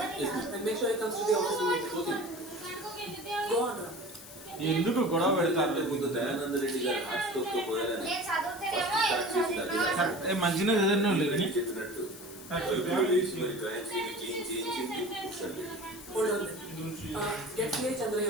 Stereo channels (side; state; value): left; noise; hiss, 16 dB below the sound